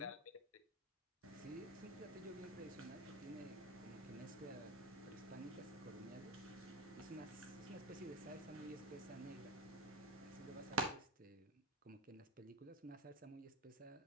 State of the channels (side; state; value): both; normal; correlation 0.15